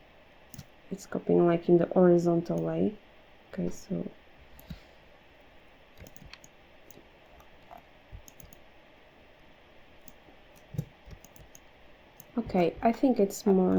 It's copying like in the horizontal way. Okay, so okay, I think it's more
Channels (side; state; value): both; identical; correlation 1.00